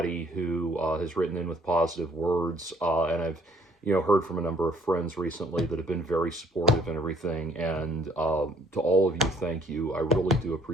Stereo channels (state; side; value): normal; both; correlation 0.61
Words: who has written in with positive words, and I've heard from a number of friends recently that have been very supportive and everything. And to all of you, thank you. I really do